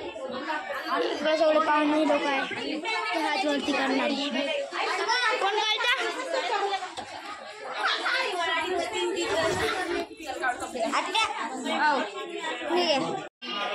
इकडे सगळे पाहुणे लोक आहे. हात वरती करणार कोण काढता.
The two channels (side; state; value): both; identical; correlation 1.00